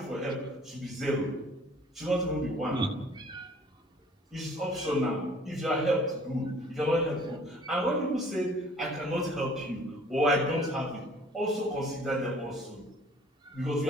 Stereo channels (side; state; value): both; normal; correlation 0.54